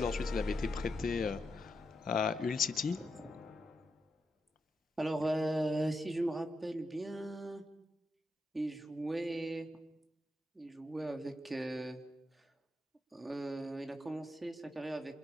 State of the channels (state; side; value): normal; both; correlation 0.84